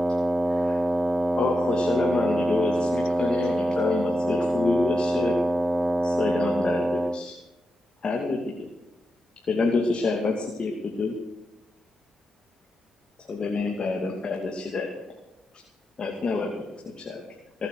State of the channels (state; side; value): normal; both; correlation 0.88